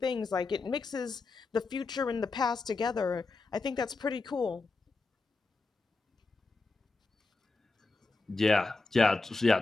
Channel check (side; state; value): right; quieter; 3.8 dB